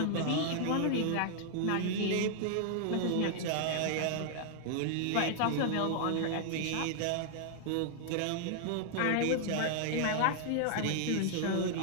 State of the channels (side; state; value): both; different; correlation 0.00